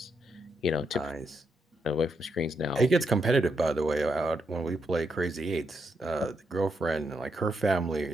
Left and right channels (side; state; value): both; normal; correlation 0.80